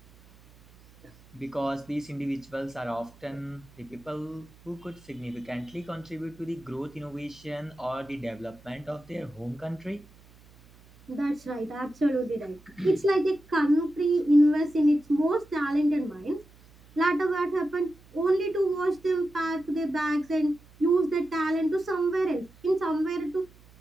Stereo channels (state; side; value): noise; right; hum, 25 dB below the sound